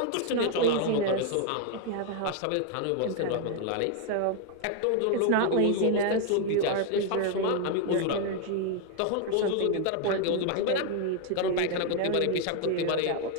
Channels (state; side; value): different; both; correlation 0.00